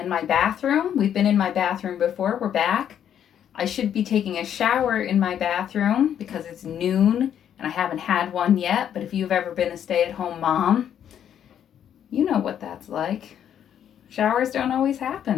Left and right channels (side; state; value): right; quieter; 9.5 dB